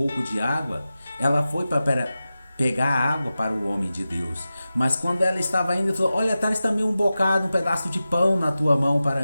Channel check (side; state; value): both; inverted; correlation -0.94